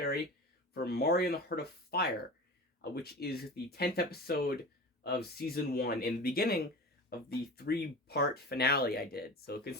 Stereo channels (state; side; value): normal; both; correlation 0.33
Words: for Mario and the Heart of Fire, which is the 10th episode of Season 1, and the beginning of the three-part finale I did. So